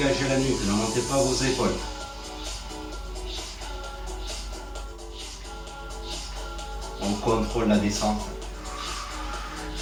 la nuque, ne montez pas vos épaules. On contrôle la descente.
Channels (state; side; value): identical; both; correlation 1.00